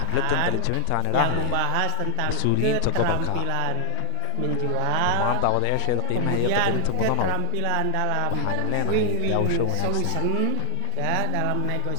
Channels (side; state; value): both; different; correlation 0.00